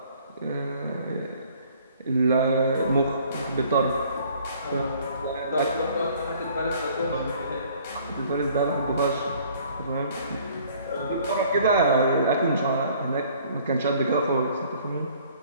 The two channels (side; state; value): both; inverted; correlation -0.56